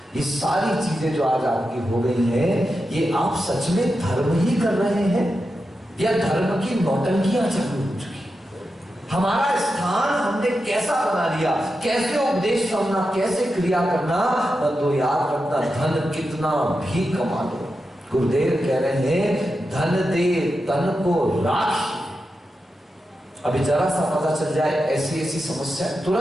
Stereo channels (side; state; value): both; normal; correlation 0.89